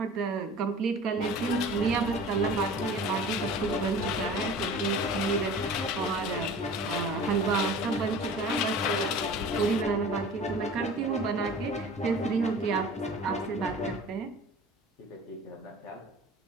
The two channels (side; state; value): both; normal; correlation 0.42